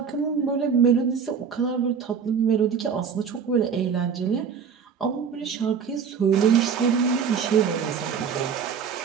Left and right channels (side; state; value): left; quieter; 6.7 dB